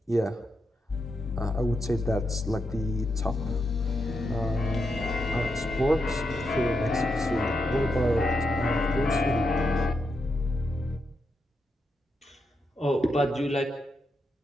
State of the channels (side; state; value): both; normal; correlation 0.84